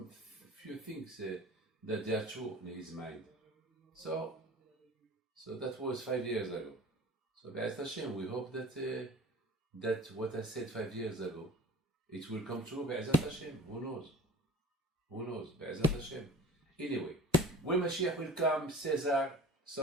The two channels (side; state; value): both; normal; correlation 0.43